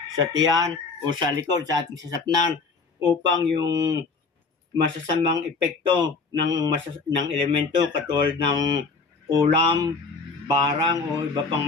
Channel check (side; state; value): right; quieter; 4.4 dB